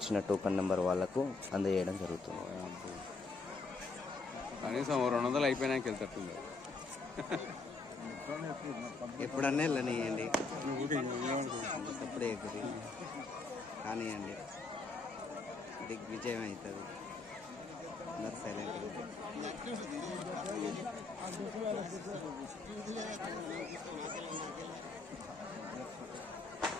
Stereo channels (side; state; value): right; quieter; 3.9 dB